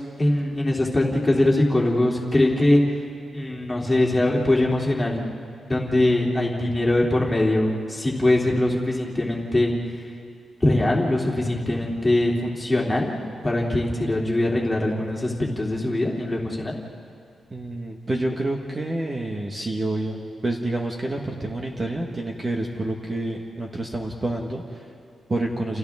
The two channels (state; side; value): normal; both; correlation 0.95